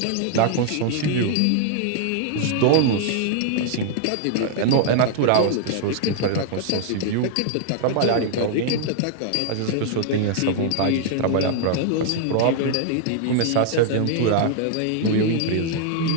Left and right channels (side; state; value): both; different; correlation 0.00